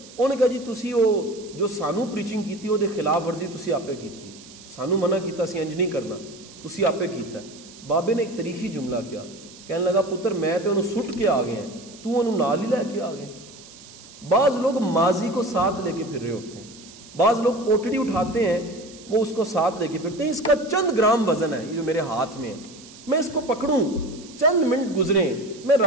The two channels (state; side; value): noise; right; hiss, 20 dB below the sound